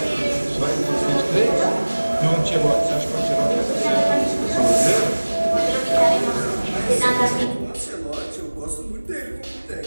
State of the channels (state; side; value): inverted; both; correlation -1.00